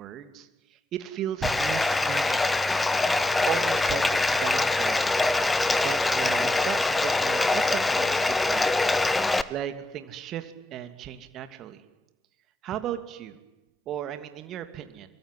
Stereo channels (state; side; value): normal; both; correlation 0.88